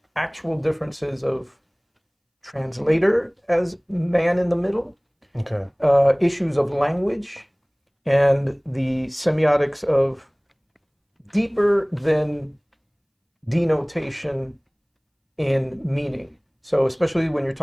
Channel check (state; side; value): identical; both; correlation 1.00